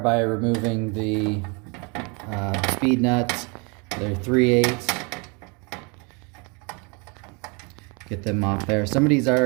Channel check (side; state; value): left; quieter; 31.3 dB